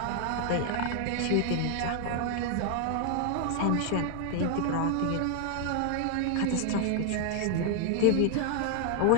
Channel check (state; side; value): different; both; correlation 0.00